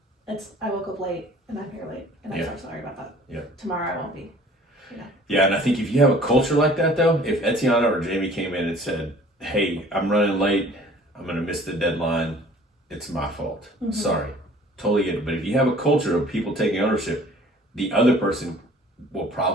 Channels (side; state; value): both; normal; correlation 0.51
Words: it's I woke up late and I'm here late and I'm so sorry about that. Yeah. Tomorrow I won't be. Yeah, and I think if you have a culture like that, though, if Etiana or Jamie came in and said, hey, I'm running late, I'm going to miss the deadline, it's my fault. Sorry. Totally get it. But if you have a culture of people taking ownership, the other person will